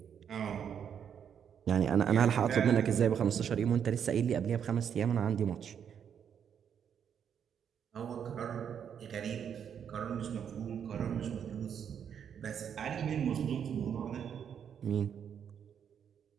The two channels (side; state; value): left; quieter; 8.1 dB